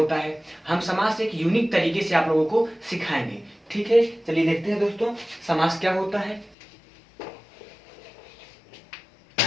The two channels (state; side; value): drops out; right; at 6.6 s